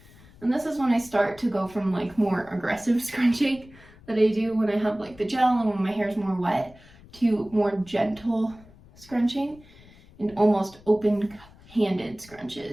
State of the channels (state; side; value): noise; left; rumble, 24 dB below the sound